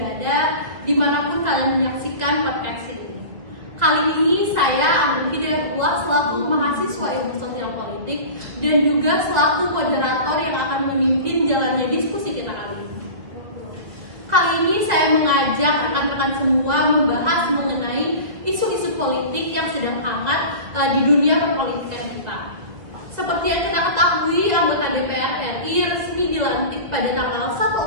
dimanapun kalian menyaksikan podcast ini. Kali ini saya Amrul Hidayatullah selaku mahasiswa ilmu sosial politik dan juga selaku moderator yang akan memimpin jalannya diskusi kita kali ini. Kali ini saya mengajak rekan-rekan semua membahas mengenai isu-isu politik yang sedang hangat di dunia perpolitikan kita. Seperti yang kita ketahui, anggota DPR RI resmi dilantik pada tanggal 1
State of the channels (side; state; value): left; late; 2.2 ms